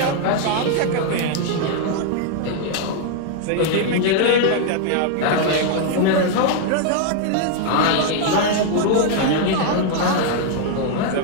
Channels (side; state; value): both; different; correlation 0.00